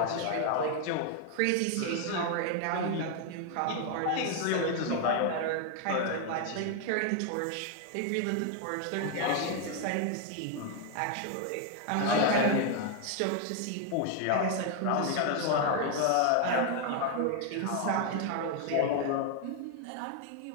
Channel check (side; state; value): both; different; correlation 0.00